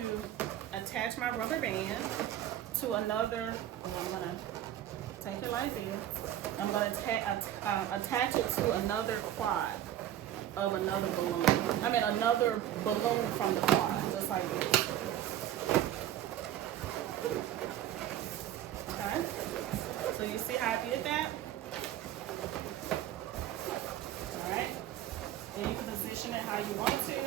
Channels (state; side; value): quieter; left; 11.9 dB